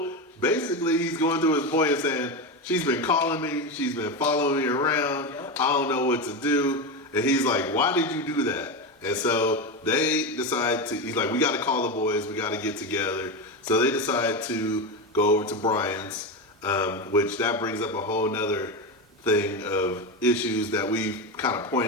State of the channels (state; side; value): normal; both; correlation 0.16